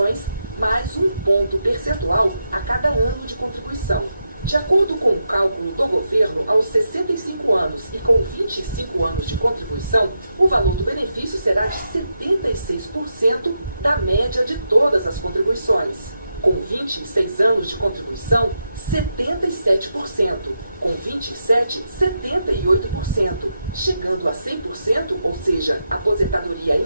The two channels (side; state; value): both; inverted; correlation -0.85